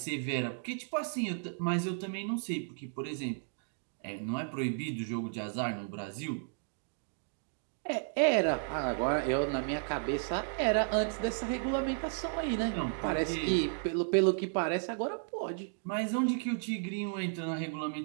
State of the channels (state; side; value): silent; left; digital silence